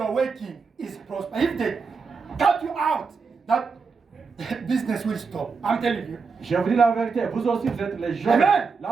working is prosper. If they cut you out, that business will stop. I'm telling you. Je vous dis la vérité, vous aussi vous êtes les Joseph. Amen.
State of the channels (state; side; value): quieter; left; 5.0 dB